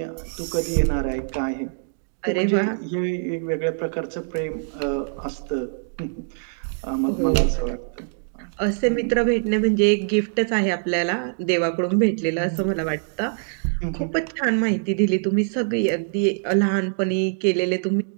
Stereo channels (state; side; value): silent; left; digital silence